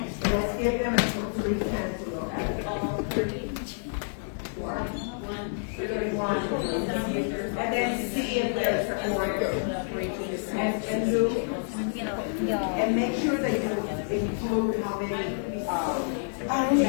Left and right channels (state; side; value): silent; right; digital silence